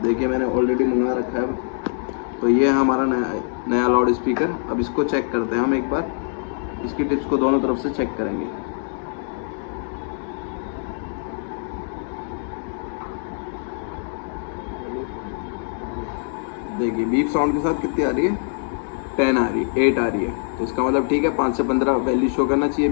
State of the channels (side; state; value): right; silent; 63 dB below the other